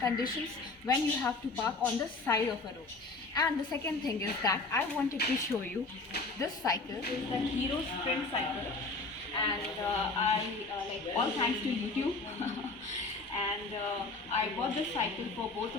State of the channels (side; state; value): right; quieter; 3.5 dB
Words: when you have to park on the side of a road. And the second thing is that I wanted to show you this cycle, is the Hero Sprint cycle, and like all thanks to YouTube. And I bought this cycle for both